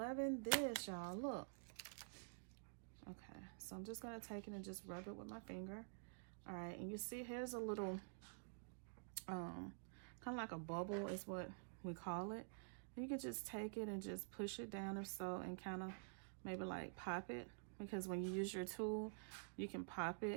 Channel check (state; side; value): silent; left; digital silence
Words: this, y'all. Look. Okay, so I'm just going to take it and just rub it with my finger. All right, and you see here's a little kind of like a bubble is what we call it. And you can just take it and just push it down or so, and kind of maybe like pop it, because when you use your tool you can pop